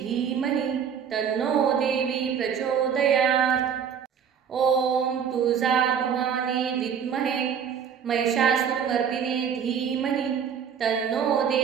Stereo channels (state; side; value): quieter; left; 7.6 dB